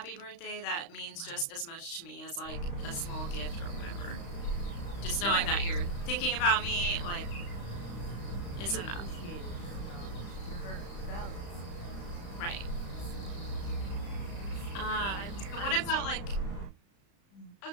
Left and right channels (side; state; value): right; late; 35 ms